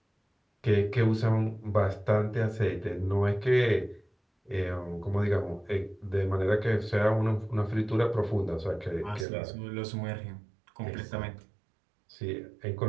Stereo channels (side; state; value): left; drops out; at 9.2 s